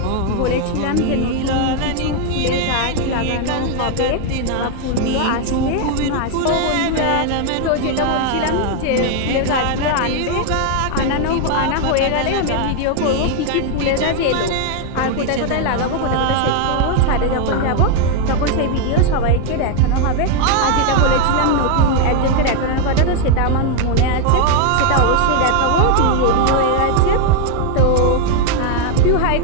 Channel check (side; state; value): both; different; correlation 0.01